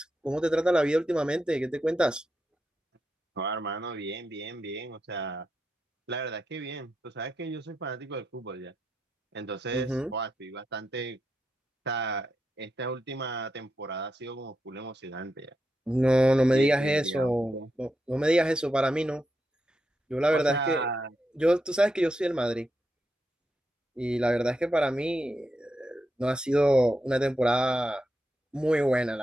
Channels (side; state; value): both; normal; correlation 0.85